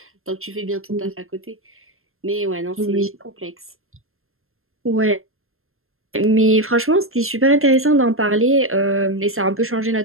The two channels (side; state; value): left; late; 0.61 ms